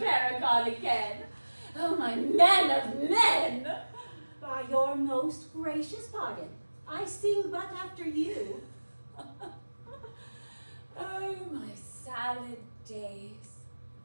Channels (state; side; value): inverted; both; correlation -1.00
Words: again. Oh, my man of men. By your most gracious pardon, I sing but after you. Oh, my salad days,